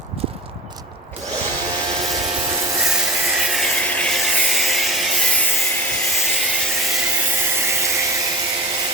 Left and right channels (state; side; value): normal; both; correlation 0.33